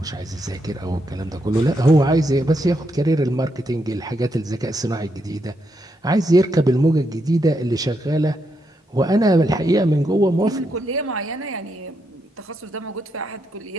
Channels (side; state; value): both; normal; correlation 0.80